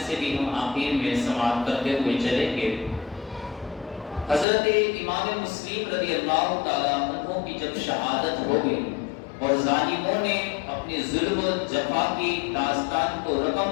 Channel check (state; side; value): drops out; right; at 4.5 s